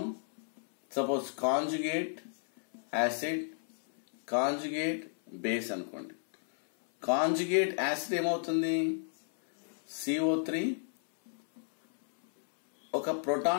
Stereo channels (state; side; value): silent; right; 56 dB below the other